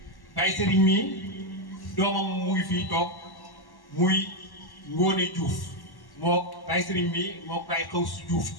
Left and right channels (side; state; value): right; late; 1.1 ms